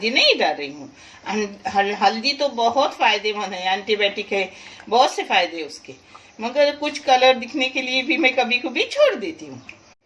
नहीं डाल रही हूँ। हल्दी तो बहुत फायदेमंद है, एंटीबायोटिक है, बहुत से फायदे उसके, मगर कुछ कलर दिखने के लिए भी मैं कभी कभी छोड़ देती हूँ।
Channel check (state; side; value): identical; both; correlation 1.00